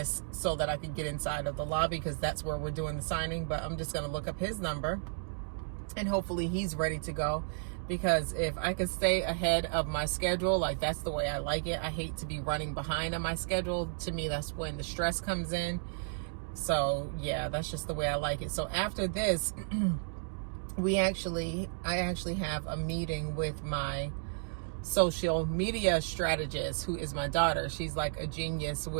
so that I can get inside of the lobby, because that's where we're doing the signing. But I'm just gonna look up his number and hopefully he's ready to go, because if I could stay ahead of my schedule, like, that's the way I like it. I hate to be running behind on my schedule. To me, that's when the stress comes in. So yeah, that's just the way I like it. So after this, I actually have a meeting with my social media strategist, who is my daughter. She's like a genius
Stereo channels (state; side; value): silent; left; digital silence